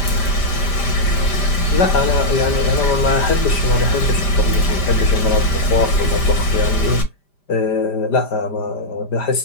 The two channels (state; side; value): late; right; 5.0 ms